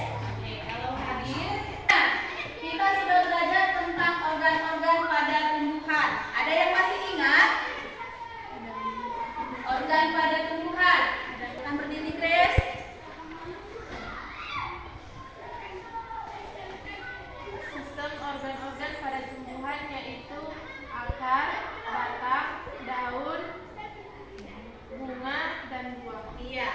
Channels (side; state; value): both; identical; correlation 1.00